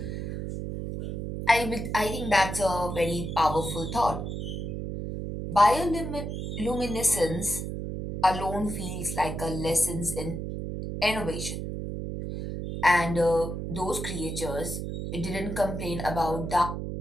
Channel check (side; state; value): right; noise; hum, 5 dB below the sound